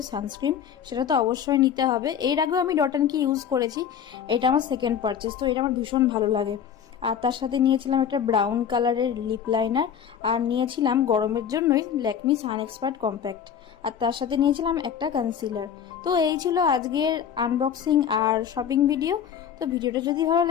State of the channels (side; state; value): right; quieter; 8.5 dB